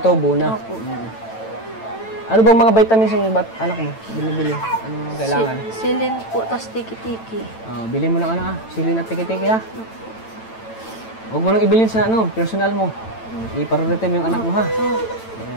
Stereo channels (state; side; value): late; right; 9.0 ms